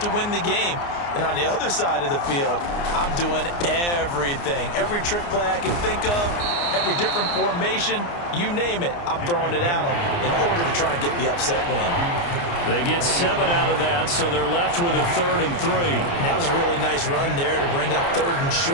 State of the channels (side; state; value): right; late; 29 ms